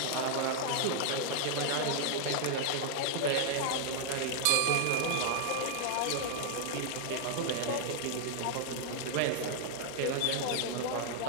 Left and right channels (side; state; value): both; different; correlation 0.00